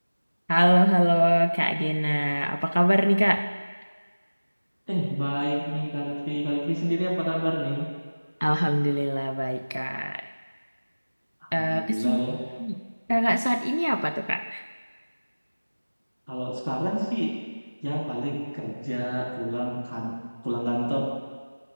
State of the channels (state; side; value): inverted; both; correlation -1.00